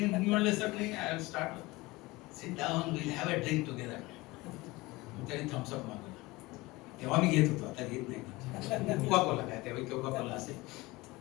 मी म्हणलं सर नाही, I will start, sit down, will have a drink together. त्याने थम्सअप मागवला. तेव्हा मी घेत होतो, आता घेत नाही. कोका कोला काय, तेव्हा कोका कोला असेल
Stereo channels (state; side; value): quieter; right; 21.5 dB